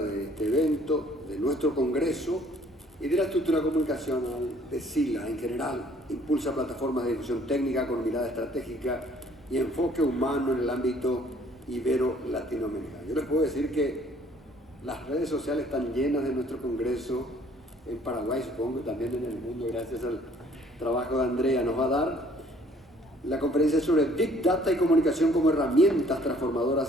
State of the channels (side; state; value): both; normal; correlation 0.59